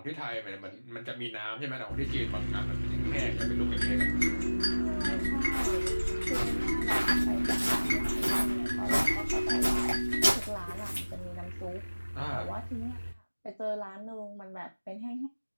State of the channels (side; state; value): both; inverted; correlation -1.00